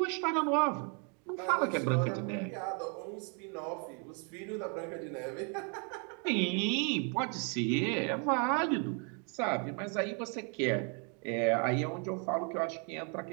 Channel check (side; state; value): left; quieter; 37.6 dB